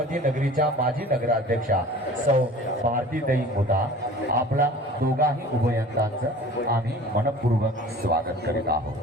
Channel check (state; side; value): normal; both; correlation 0.43